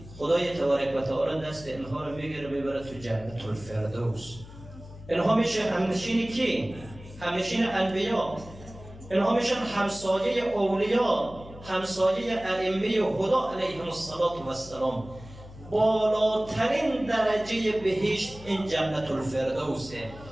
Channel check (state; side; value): noise; left; hum, 17 dB below the sound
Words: خدای تبارک و تعالی دست اینها رو میگیره میبره تو جنت الفردوس. اینها میشه همنشین کی؟ همنشین انبیا. اینها میشن همسایه اولیا، همسایه ائمه هدا علیهم السلام. بالاترین درجه بهشت این جنت الفردوسه